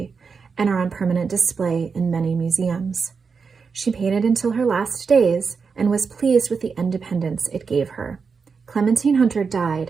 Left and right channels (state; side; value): quieter; left; 5.3 dB